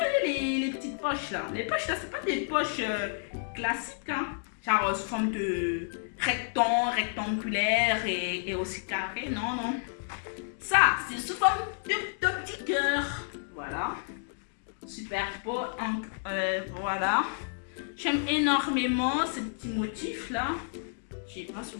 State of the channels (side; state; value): right; silent; digital silence